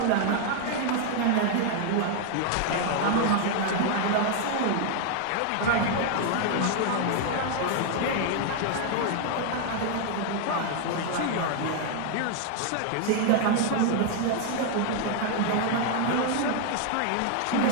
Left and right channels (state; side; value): different; both; correlation 0.00